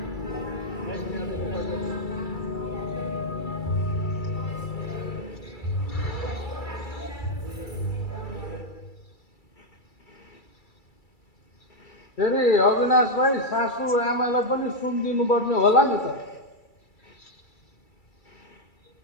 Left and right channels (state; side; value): late; right; 2.3 ms